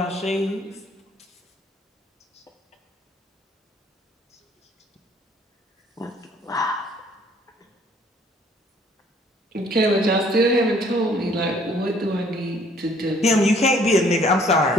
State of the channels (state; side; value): normal; both; correlation 0.61